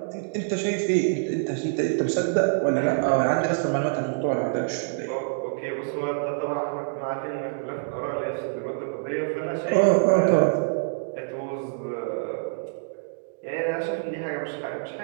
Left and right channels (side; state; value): left; silent; digital silence